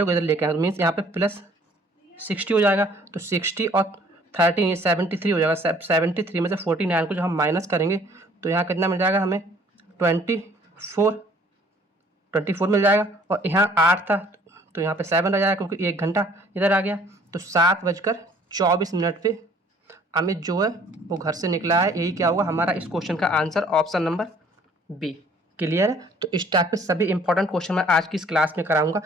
को इधर लेके आए, मीन्स यहाँ पे प्लस 60 हो जाएगा। तो 60 और 13 ये 73 हो जाएगा। 73 में से 49 को जब हम माइनस करेंगे तो यहाँ कितना मिल जाएगा हमें? 24 मिल जाएगा। और यहाँ 8 था तो यहाँ पे 7 रह जाएगा, क्योंकि 1 घंटा इधर आ गया। तो 7:24 पे अमित जो है वो घर से निकला है। यही क्या होगा हमारा इस क्वेश्चन का answer, option number B. Clear है? तो इस टाइप के सभी इंपॉर्टेंट क्वेश्चन मैं आज की इस क्लास में कराऊंगा,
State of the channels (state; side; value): normal; both; correlation 0.57